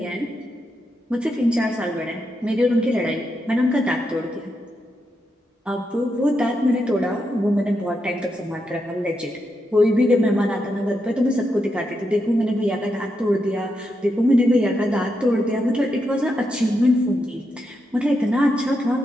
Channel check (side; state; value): both; normal; correlation 0.84